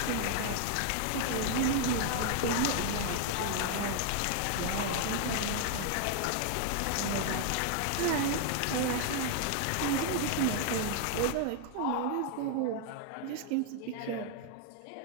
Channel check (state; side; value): different; both; correlation 0.00